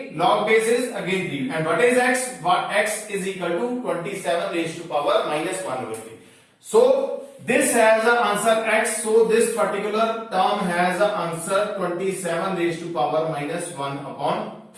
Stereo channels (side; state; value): both; identical; correlation 1.00